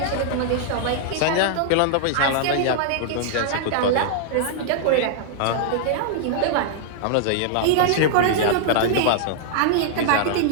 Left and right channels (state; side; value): different; both; correlation -0.01